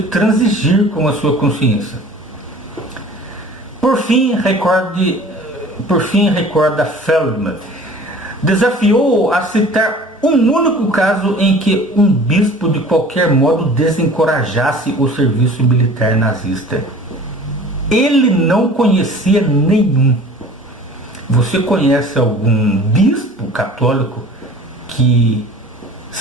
com a sua consciência? Por fim, recorda Feldman, desafiou a citar um único caso em que um bispo de qualquer modo desencorajasse o serviço militar nazista. Ele não conhecia nenhum. Você conhece algum bispo católico que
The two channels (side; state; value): both; normal; correlation 0.45